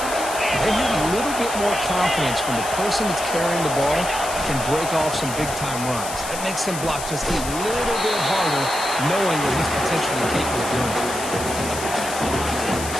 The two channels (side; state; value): left; noise; hiss, 8 dB below the sound